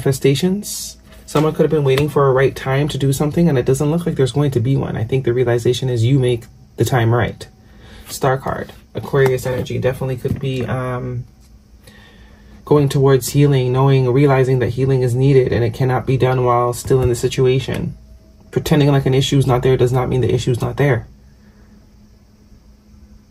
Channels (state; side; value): identical; both; correlation 1.00